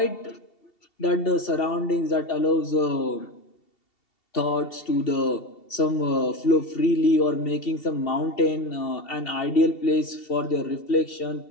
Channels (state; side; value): late; right; 2.7 ms